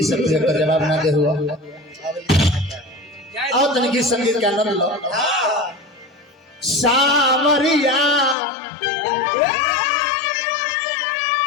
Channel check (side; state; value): right; drops out; at 8.3 s